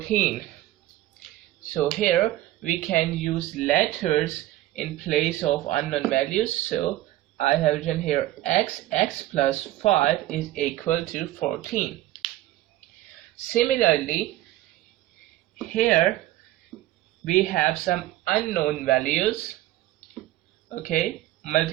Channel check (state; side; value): quieter; left; 15.4 dB